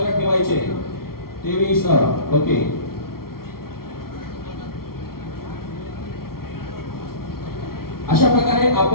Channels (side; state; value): right; late; 0.94 ms